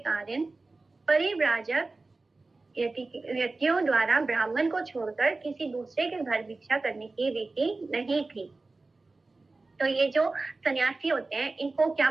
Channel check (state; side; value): quieter; left; 3.5 dB